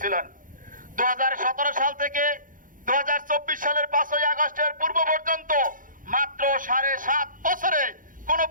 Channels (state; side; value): late; left; 0.39 ms